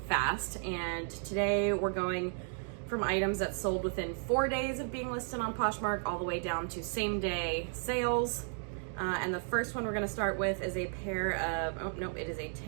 fast, and today we're going from items that sold within 4 days of being listed on Poshmark all the way down to same day sales. And the first one we're gonna start with is a pair of, oh no, it is a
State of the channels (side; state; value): left; silent; 55 dB below the other